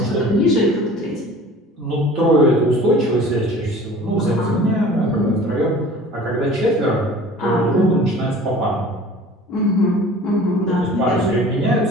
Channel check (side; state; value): both; normal; correlation 0.44